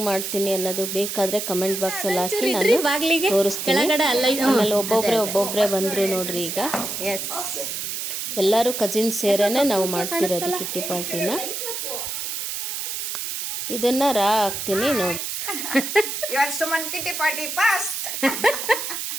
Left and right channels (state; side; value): noise; right; hiss, 4 dB below the sound